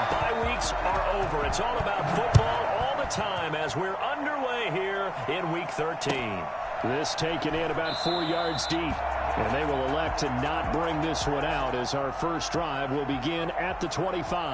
Are over. It's all about football all the time as we're underway here in Week 13. This taken in about 4 yards deep. And they will elect to not bring this one out as our first drive will begin at the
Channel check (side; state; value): both; identical; correlation 1.00